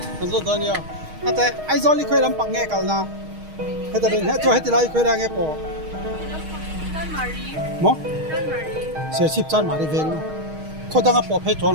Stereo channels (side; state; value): left; late; 6.4 ms